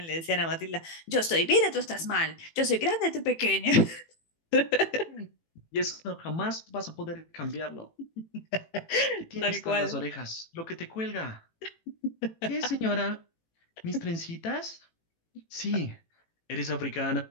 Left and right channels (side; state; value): right; late; 18 ms